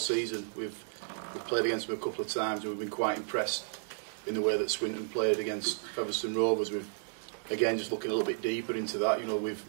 We've played against them a couple of times and we've been quite impressed in the way that Swinton played against Featherstone Rovers. We've again just looking a little bit deeper into that. You know,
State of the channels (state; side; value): silent; left; 56 dB below the other